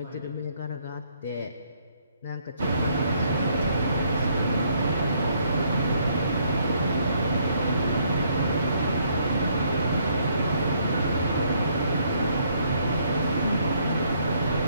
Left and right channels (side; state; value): both; inverted; correlation -0.69